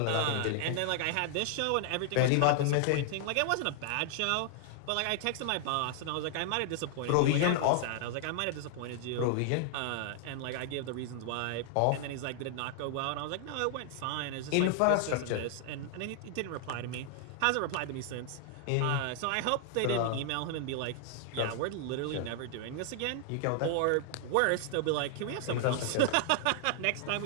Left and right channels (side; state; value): both; different; correlation 0.00